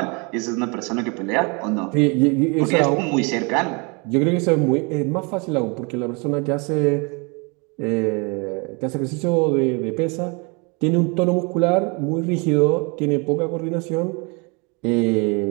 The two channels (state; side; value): quieter; left; 31.2 dB